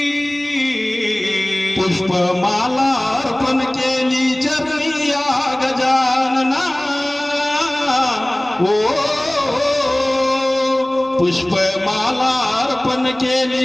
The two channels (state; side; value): noise; right; rumble, 30 dB below the sound